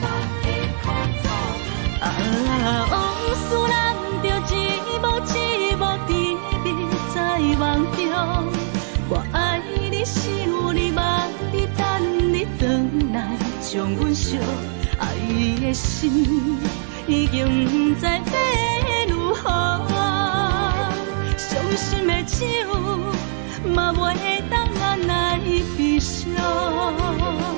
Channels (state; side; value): silent; left; digital silence